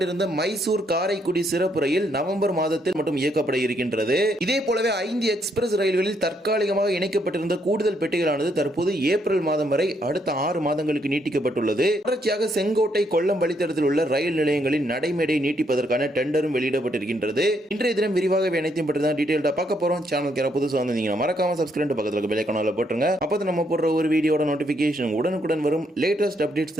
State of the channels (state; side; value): normal; both; correlation 0.74